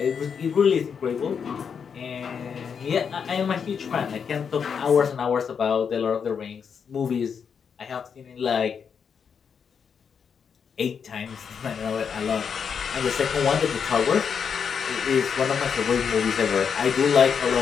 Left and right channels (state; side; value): quieter; right; 6.7 dB